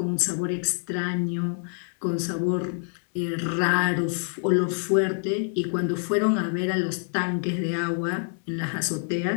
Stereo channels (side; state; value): right; silent; 60 dB below the other